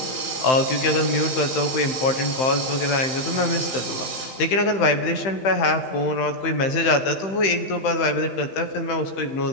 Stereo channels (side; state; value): right; late; 15 ms